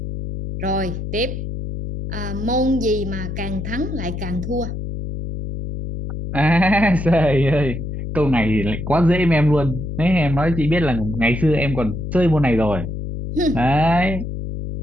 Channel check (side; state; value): left; noise; hum, 6 dB below the sound